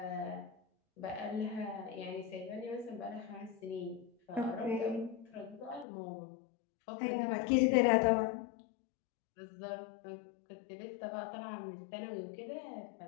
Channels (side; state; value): right; drops out; at 5.9 s